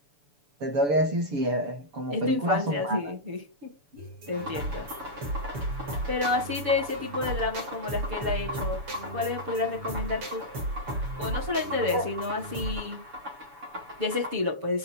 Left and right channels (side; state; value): left; late; 7.0 ms